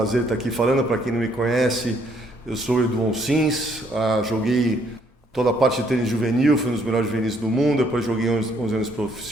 estar aqui falando. Para quem não me conhece, eu sou o Edu Onsins, joguei toda a parte de tênis juvenil, fui um dos melhores juvenis do mundo, depois joguei 11 anos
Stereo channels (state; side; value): normal; both; correlation 0.68